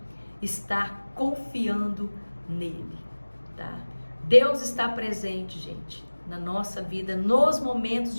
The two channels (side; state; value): both; inverted; correlation -1.00